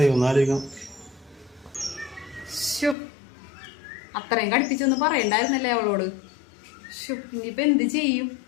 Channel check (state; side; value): drops out; right; at 3.0 s